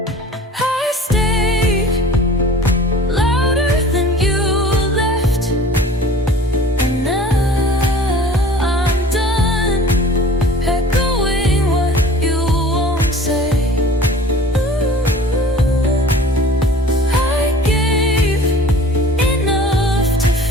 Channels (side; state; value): both; normal; correlation 0.45